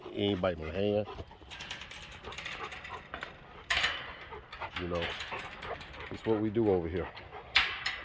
He ain't biting my hand. You know, it's what we do over here.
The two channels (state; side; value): identical; both; correlation 1.00